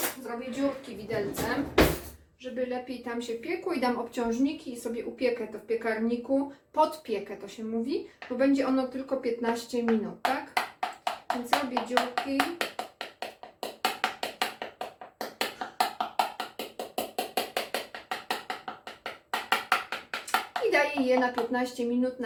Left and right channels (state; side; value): identical; both; correlation 1.00